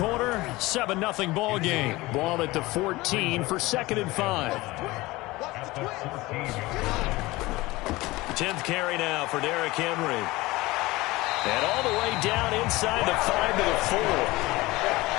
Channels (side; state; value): right; quieter; 20.4 dB